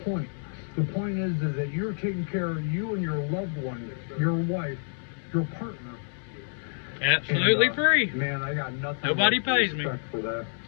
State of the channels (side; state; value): right; silent; digital silence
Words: point. The point is that you're taking care of you and your loved one, your wife, your partner. Absolutely And, free. Man, I got nothing. Nobody but pays me. respect for that.